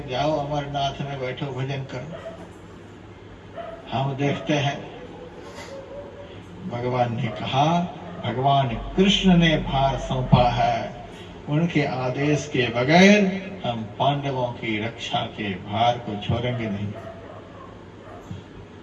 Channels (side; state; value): both; identical; correlation 1.00